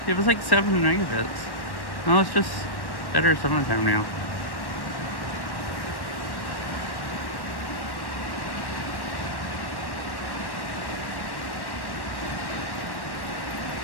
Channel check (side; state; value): right; late; 1.1 ms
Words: It was like 7 megabits. No, it's just better some of the time now.